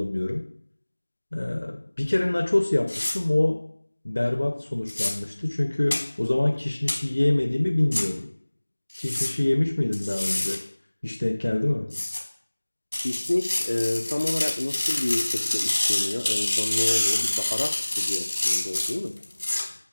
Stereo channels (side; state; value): both; inverted; correlation -1.00